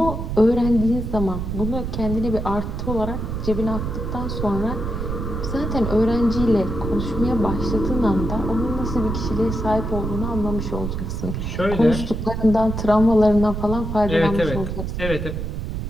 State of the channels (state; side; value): noise; right; rumble, 4 dB below the sound